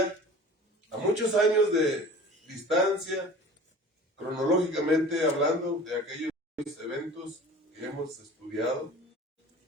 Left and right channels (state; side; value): normal; both; correlation 0.42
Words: a muchos años de distancia, cronológicamente hablando, de aquellos eventos que hemos estudiado,